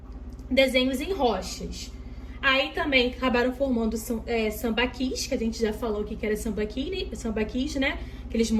desenhos em rochas. Aí também acabaram formando sambaquis, que a gente já falou que era sambaquis, né? Aqueles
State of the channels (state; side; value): identical; both; correlation 1.00